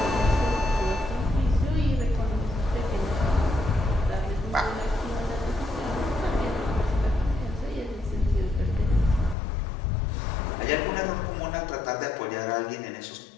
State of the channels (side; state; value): right; drops out; at 9.3 s